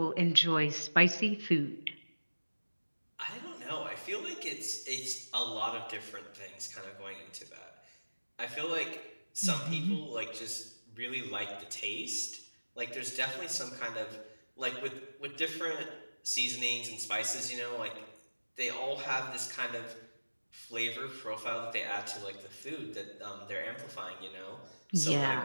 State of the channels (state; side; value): inverted; both; correlation -1.00